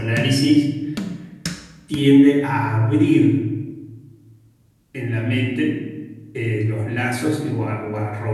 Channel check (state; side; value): identical; both; correlation 1.00